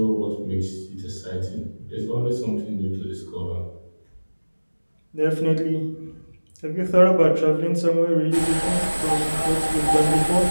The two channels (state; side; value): inverted; both; correlation -1.00